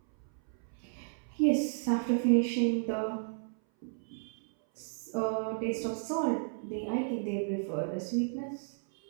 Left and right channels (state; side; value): silent; left; 56 dB below the other